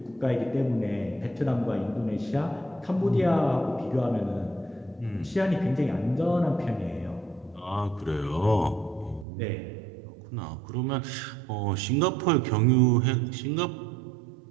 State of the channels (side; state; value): left; drops out; at 9.2 s